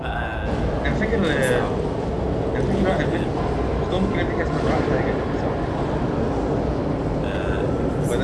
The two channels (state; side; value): identical; both; correlation 1.00